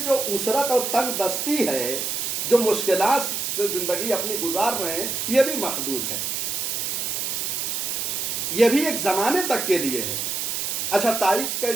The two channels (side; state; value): right; noise; hiss, 1 dB below the sound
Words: جو اسرت اور تنگ دستی ہے، جو مشکلات سے زندگی اپنی گزار رہے ہیں، یہ بھی محدود ہے، یہ بھی ایک زمانے تک کے لیے ہے۔ اچھا، تائید